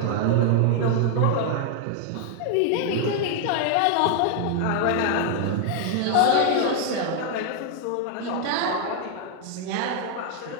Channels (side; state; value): both; different; correlation 0.00